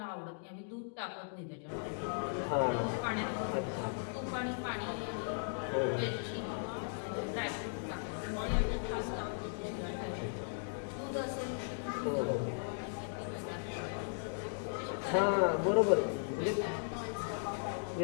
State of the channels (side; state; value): right; silent; digital silence